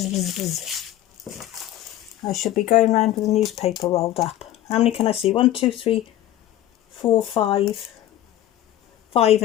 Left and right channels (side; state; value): right; quieter; 13.2 dB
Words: buzz, buzz. I should be going around with a newspaper rolled up. How many can I see? 1, 2, 3, 4, 5. 5